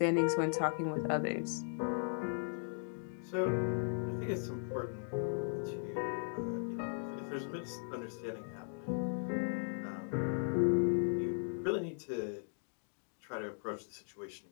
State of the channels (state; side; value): silent; right; digital silence